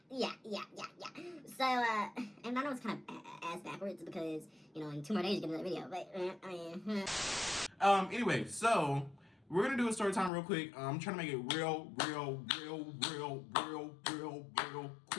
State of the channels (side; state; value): right; drops out; at 10.3 s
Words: So, and I know it's kind of ass backwards because, you know, in 2 more days you get another video. But, Anyway, so we're gonna do a story time real quick. I'm trying to make it real